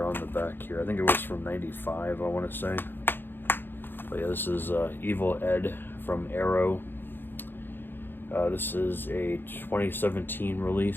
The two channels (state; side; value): late; right; 0.099 ms